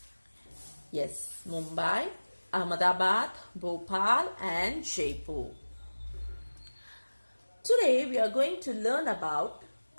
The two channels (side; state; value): both; inverted; correlation -1.00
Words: Yes, Mumbai, Ahmedabad, Bhopal and Jaipur. Today we are going to learn about